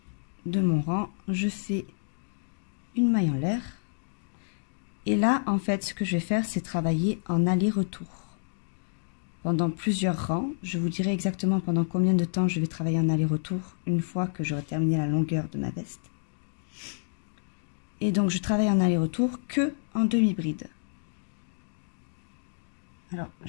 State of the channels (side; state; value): right; silent; digital silence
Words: de mon rang. Je fais une maille en l'air. Et là, en fait, ce que je vais faire, c'est travailler en aller-retour. Pendant plusieurs rangs, je vous dirai exactement pendant combien de temps je vais travailler en aller-retour une fois que j'aurai terminé la longueur de ma veste. Et donc, je travaille en aller-retour que en demi-bride. Alors,